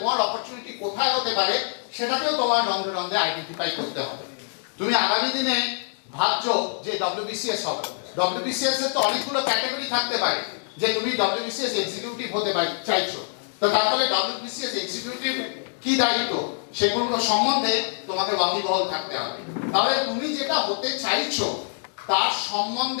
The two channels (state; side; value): silent; right; digital silence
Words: অপরচুনিটি কোথায় হতে পারে সেটাকেও তোমার রন্ধে রন্ধে আইডেন্টিফাই করতে হবে। তুমি আগামী দিনে ভাবছো যে ডব্লিউবিসিএস হবে, ডব্লিউবিসিএস এর তো অনেকগুলো ক্যাটাগরি থাকতে পারে, যে তুমি ডব্লিউবিসিএস এক্সিকিউটিভ হতে চাইছো, তো তাহলে ডব্লিউবিসিএস এক্সিকিউটিভ কি দায়িত্ব সেগুলো সম্বন্ধে তোমাকে ওয়াকিবহাল থাকতে হবে। তাহলে তুমি যেটা হতে চাইছো তার